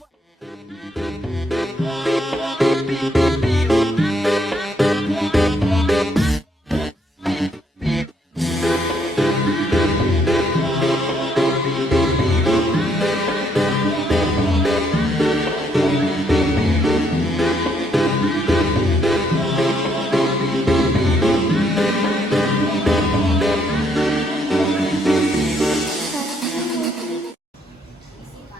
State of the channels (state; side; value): normal; both; correlation 0.72